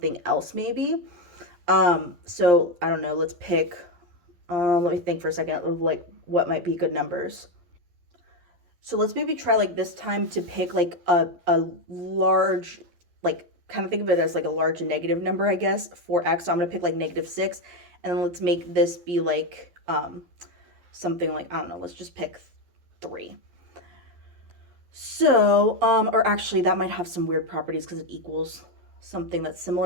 else maybe. So I don't know. Let's pick, let me think for a second of like what might be good numbers. So let's maybe try like this time to pick like a large, like kind of think of it as like a large negative number, I guess, for x. So I'm going to pick like negative 6. And then let's make this be like something like, I don't know, let's just pick 3. So, or actually that might have some weird properties because it equals something that's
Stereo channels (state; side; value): late; left; 11 ms